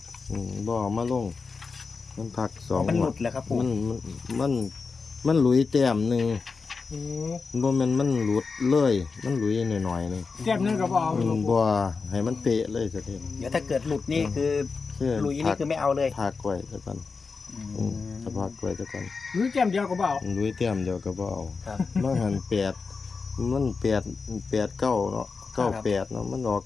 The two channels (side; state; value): right; quieter; 4.7 dB